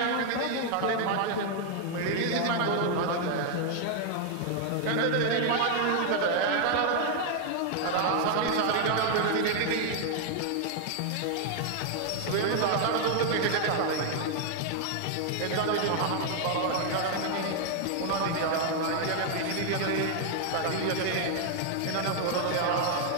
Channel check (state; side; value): different; both; correlation 0.00